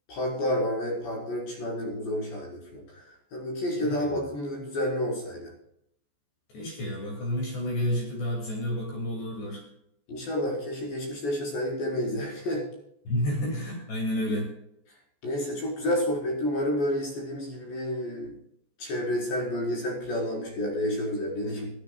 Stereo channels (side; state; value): right; late; 14 ms